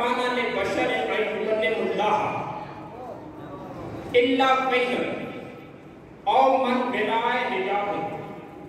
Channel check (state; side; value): identical; both; correlation 1.00